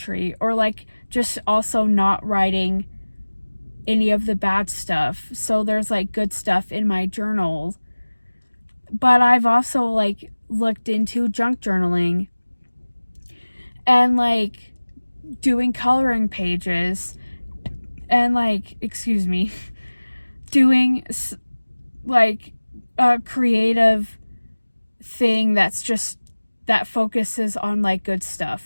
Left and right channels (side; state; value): both; inverted; correlation -1.00